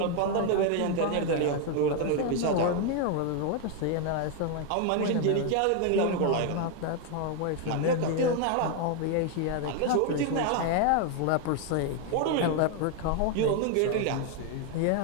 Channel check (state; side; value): different; both; correlation 0.01